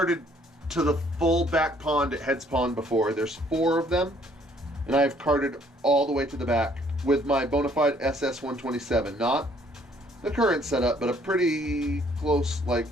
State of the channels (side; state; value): both; normal; correlation 0.63